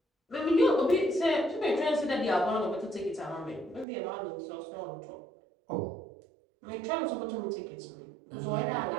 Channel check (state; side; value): drops out; left; at 3.9 s